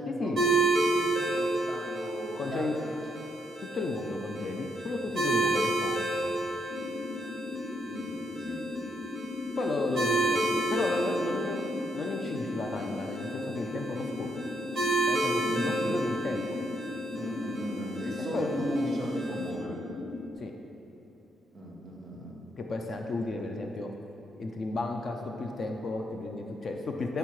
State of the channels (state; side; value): normal; both; correlation 0.76